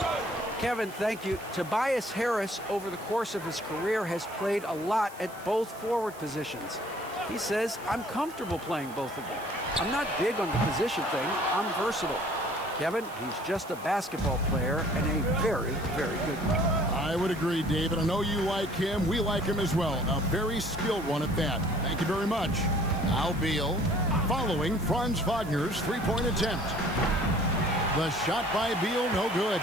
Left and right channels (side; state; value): right; noise; hiss, 20 dB below the sound